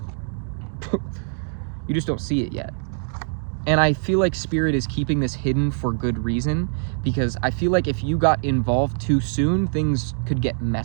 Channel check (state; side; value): silent; left; 63 dB below the other